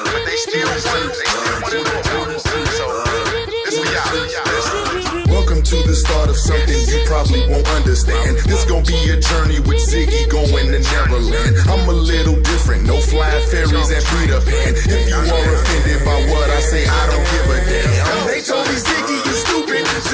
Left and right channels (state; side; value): identical; both; correlation 1.00